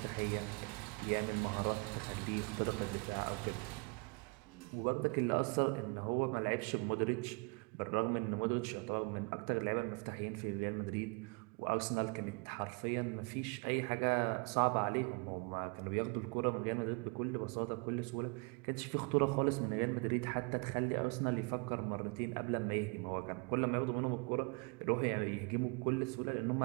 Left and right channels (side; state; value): left; quieter; 31.2 dB